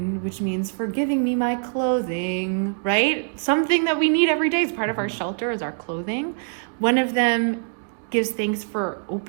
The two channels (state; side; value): silent; left; digital silence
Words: which means for giving me my clothing, right? Something that we need every day as part of our shelter is our clothing. One of them gives thanks for